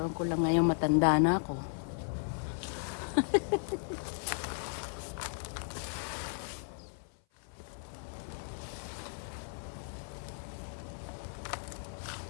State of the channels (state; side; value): silent; right; 54 dB below the other